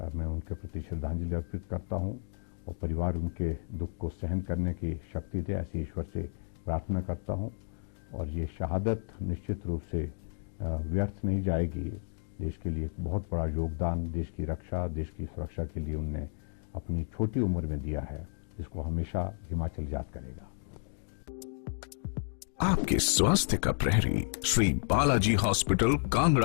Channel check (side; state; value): right; silent; digital silence